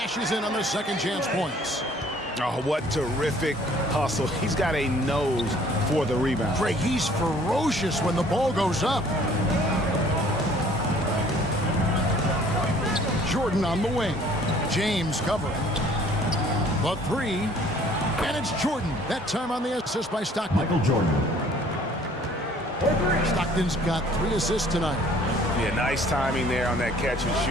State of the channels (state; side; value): normal; both; correlation 0.56